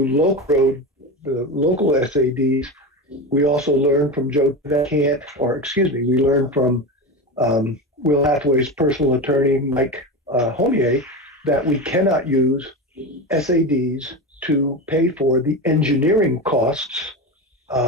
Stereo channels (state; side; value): normal; both; correlation 0.22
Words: the local SADs, we also learned from we learned from Will Hathaway's personal attorney, Mike Homier, that we cannot use SADs to pay for the engineering costs